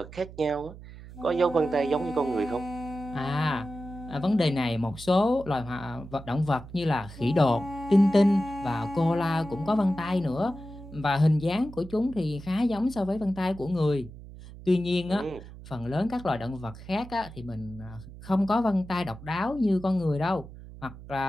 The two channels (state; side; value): noise; right; hum, 16 dB below the sound